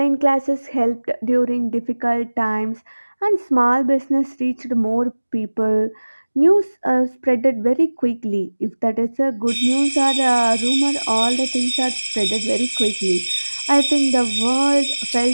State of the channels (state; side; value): inverted; both; correlation -1.00